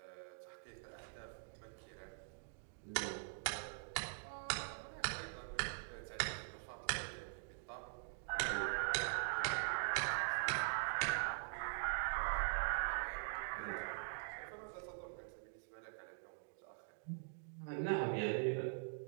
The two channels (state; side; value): silent; left; digital silence